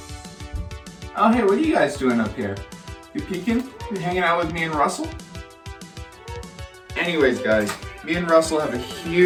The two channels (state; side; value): identical; both; correlation 1.00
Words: Oh, hey, what are you guys doing up here? You peeking? You hanging out with me and Russell? Anyways, guys, me and Russell have a